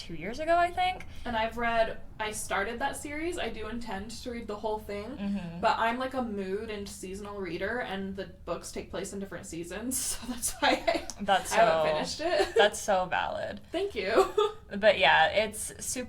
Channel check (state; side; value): identical; both; correlation 1.00